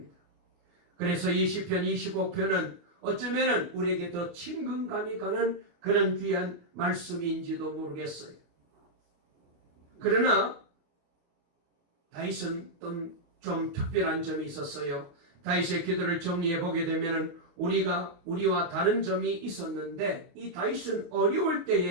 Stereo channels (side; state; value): left; late; 28 ms